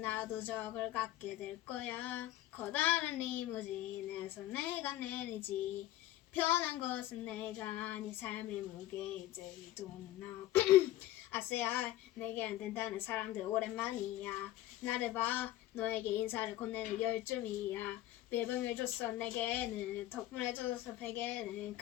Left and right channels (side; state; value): right; quieter; 14.6 dB